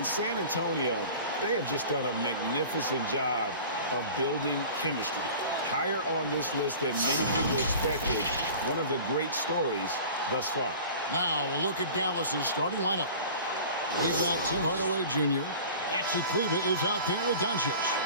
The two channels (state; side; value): inverted; both; correlation -0.40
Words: San Antonio, they have just done a magnificent job of building chemistry. Higher on this list than many people expected. One of the great stories thus far. Now, we'll look at Dallas's starting lineup. We've got Tim Hardaway Jr. Maxi Kleba is out there with Doncic.